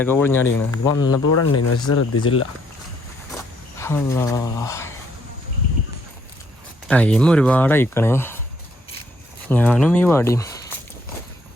പൊളിഞ്ഞടിക്കണ. ഇത് വന്നപ്പോൾ ഇവിടെ ഉണ്ടായിരുന്നു, പക്ഷെ ശ്രദ്ധിച്ചില്ല. അല്ലാ, ടൈം ഒരുപാട് അയക്കണേ. ഞാനും ഈ വടിയും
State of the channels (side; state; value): both; normal; correlation 0.69